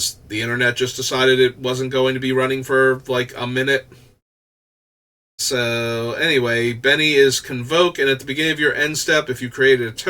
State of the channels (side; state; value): both; identical; correlation 1.00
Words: the internet just decided it wasn't going to be running for like a minute. So anyway, Benny is Convoke, and at the beginning of your end step, if you created a